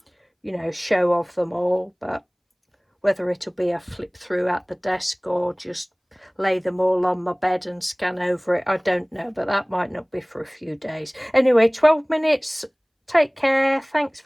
you know, show of them all, but whether it'll be a flip through at the desk or just lay them all on my bed and scan over it, I don't know, but that might not be for a few days. Anyway, 12 minutes. Take care. Thanks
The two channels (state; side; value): identical; both; correlation 1.00